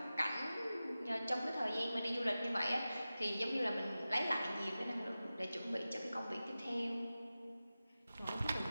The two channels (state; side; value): inverted; both; correlation -0.95